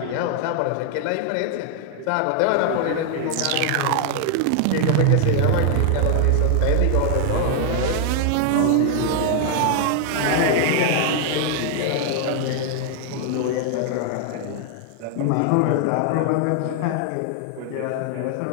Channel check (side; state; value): both; different; correlation 0.00